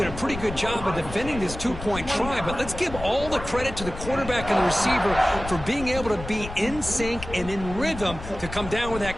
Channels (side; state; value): left; noise; rumble, 10 dB below the sound